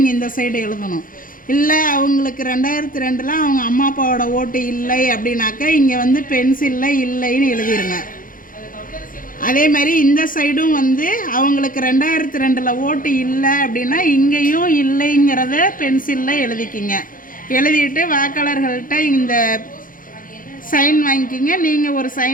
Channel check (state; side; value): late; right; 0.40 ms